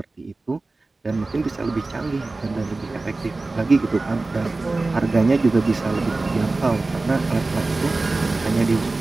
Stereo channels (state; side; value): quieter; left; 3.3 dB